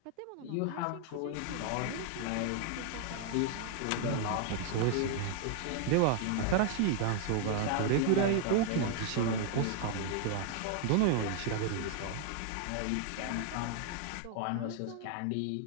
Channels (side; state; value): both; different; correlation 0.00